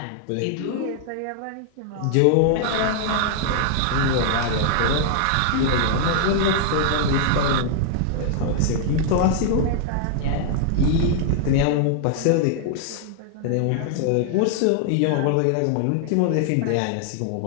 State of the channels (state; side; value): different; both; correlation -0.01